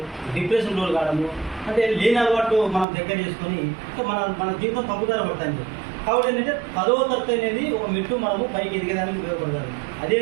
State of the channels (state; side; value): drops out; left; at 2.9 s